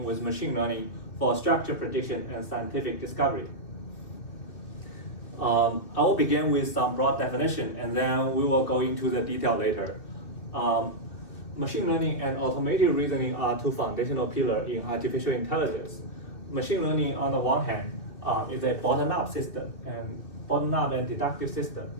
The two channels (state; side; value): late; right; 2.7 ms